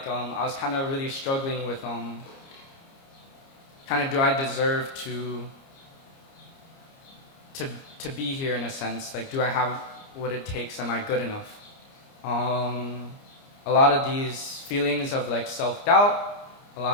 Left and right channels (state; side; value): late; right; 29 ms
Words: I was kind of really struggling with kind of do I deserve to be here in a sense? Like do I have what it takes? Am I good enough? A lot of these feelings of like self-doubt, a